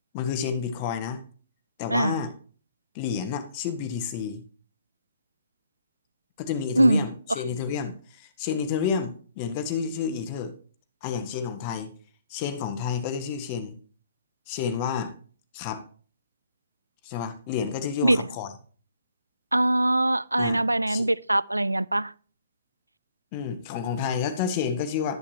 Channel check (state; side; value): inverted; both; correlation -0.68